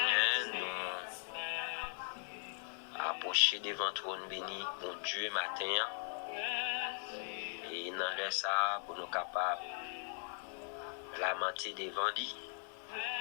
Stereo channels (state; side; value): silent; right; 52 dB below the other